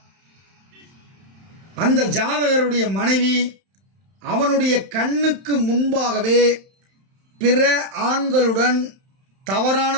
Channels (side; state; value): left; late; 31 ms